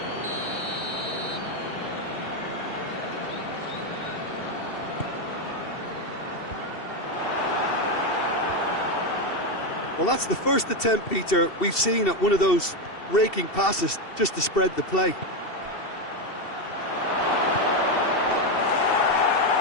Well, that's the first attempt, Peter, we've seen at one of those raking passes just to spread the play.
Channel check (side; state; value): right; late; 2.7 ms